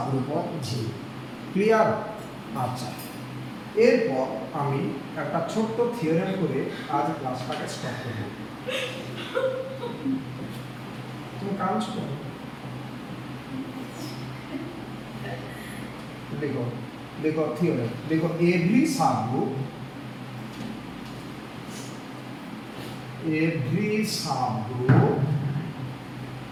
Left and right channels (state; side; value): identical; both; correlation 1.00